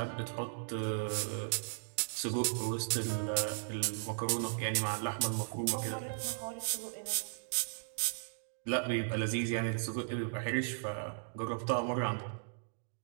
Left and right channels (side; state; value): left; silent; digital silence